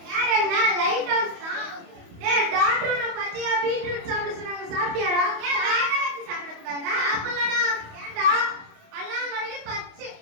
யார் என்ன லைட் ஹவுஸ் தான். டேய் டாக்டர் நான் பச்சையா பீட்ரூட் சாப்பிட சொன்னாங்க, சாப்பிட்டியாடா? ஏன் வேக வச்சு சாப்பிட கூடாதா? அப்பலடா ஏன்டா அல்லாங்கடி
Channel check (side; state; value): left; late; 28 ms